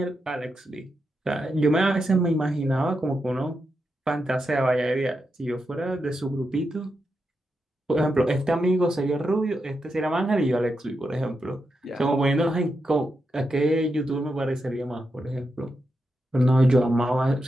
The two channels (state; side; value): normal; both; correlation 0.86